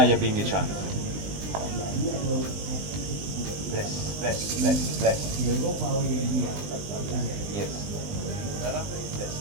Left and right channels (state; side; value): late; left; 20 ms